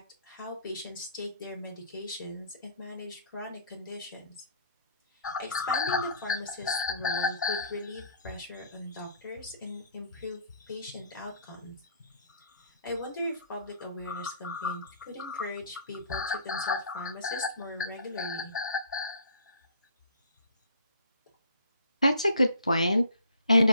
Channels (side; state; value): both; inverted; correlation -0.55